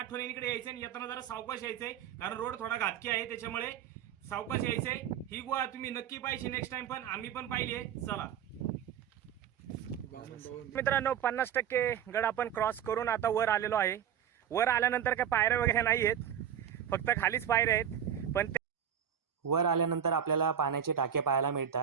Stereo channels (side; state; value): left; quieter; 9.2 dB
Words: यायचं आणि येताना जरा सावकाश यायचंय, कारण रोड थोडा घातकी आहे, त्याच्यामुळे सावकाश यायचंय. ही गुहा तुम्ही नक्की पाहिजे नेक्स्ट टाइम, पण आम्ही पण पाहिली आहे. चला मित्रांनो, 50% गड आपण क्रॉस करून आता वर आलेलो आहे. वर आल्यानंतर काय पायऱ्या वगैरे नाही आहेत, फक्त खालीच पायऱ्या आहेत. पण वर आल्यानंतर आपल्याला पाण्याचे टाके पाहायला